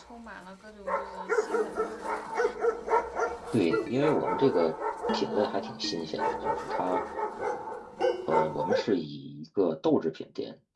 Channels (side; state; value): both; identical; correlation 1.00